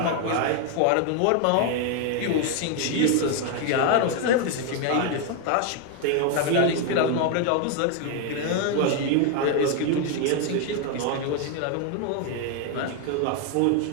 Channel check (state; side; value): different; both; correlation 0.01